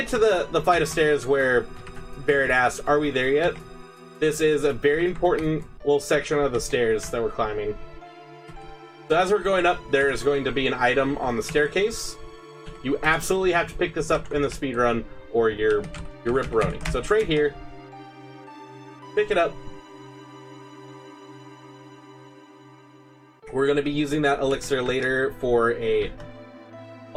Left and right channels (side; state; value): both; identical; correlation 1.00